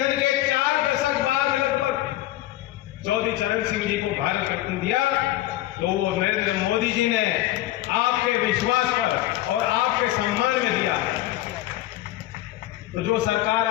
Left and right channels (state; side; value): quieter; right; 15.3 dB